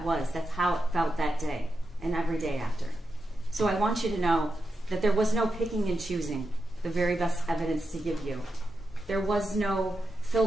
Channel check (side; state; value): both; normal; correlation 0.88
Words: was. That's how it felt that day and every day after. So I want you to know that there was no picking and choosing the very best evidence to give you. There was no